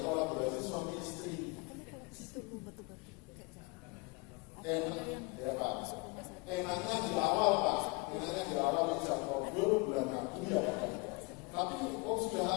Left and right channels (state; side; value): quieter; right; 27.7 dB